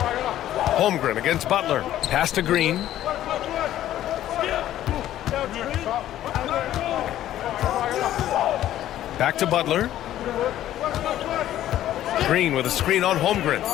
Holmgren against Butler. Pass to Green. Back to Butler. Green with a screen on Holmgren.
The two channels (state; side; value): quieter; right; 12.7 dB